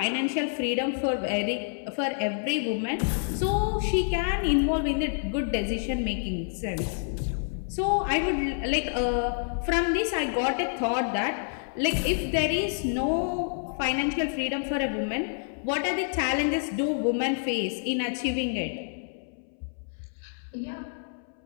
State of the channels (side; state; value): right; silent; 59 dB below the other